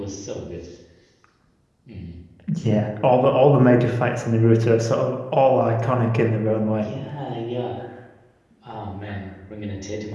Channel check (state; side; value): identical; both; correlation 1.00